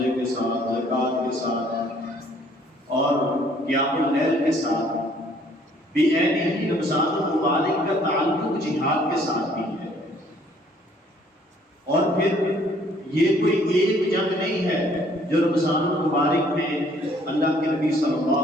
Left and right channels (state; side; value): normal; both; correlation 0.61